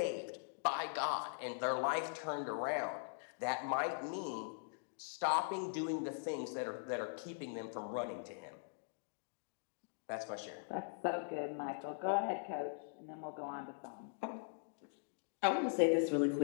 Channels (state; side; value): silent; right; digital silence